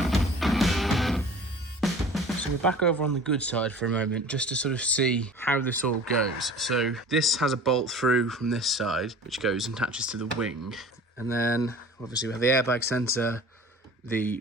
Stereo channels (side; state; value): both; normal; correlation 0.43